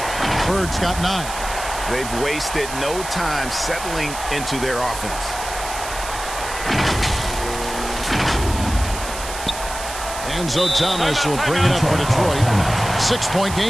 Bird's got 9. They've wasted no time settling into their offense. Enzo Thomas will bring it up for Detroit. 6-point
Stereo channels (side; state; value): right; noise; hiss, 10 dB below the sound